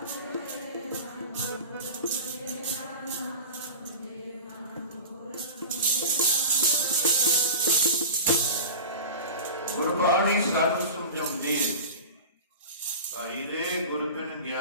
गुरबाणी सानू समझाउंदी है, भाई रे गुर बिन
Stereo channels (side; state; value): both; inverted; correlation -0.32